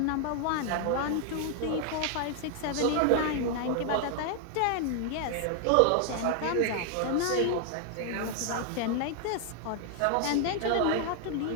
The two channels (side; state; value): both; different; correlation 0.00